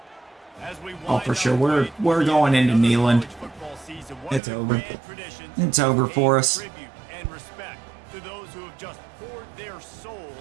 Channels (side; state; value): left; drops out; at 4.4 s